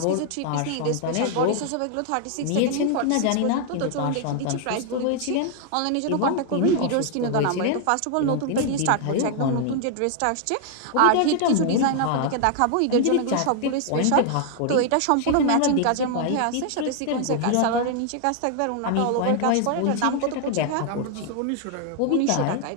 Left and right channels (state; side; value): different; both; correlation 0.00